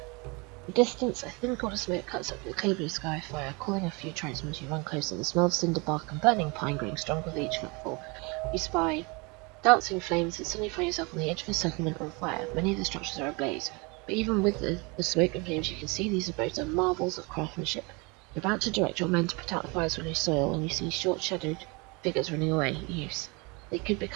In the distance, a thin cloud of smoke cuts up the clear blue sky fire, calling a few tribesmen as you run closer. The smell of cinder bark and burning pine growing stronger with each footfall. You spy dancing flames and suddenly find yourself on the edge of a settlement on fire. Many of the structures are ablaze. But even with the smoke and flames, you can see these abodes are marvels of craftsmanship. You're about to direct your men to put out the fires with new soil when you see short-shadowed figures running away. Use. They could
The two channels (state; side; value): quieter; left; 28.7 dB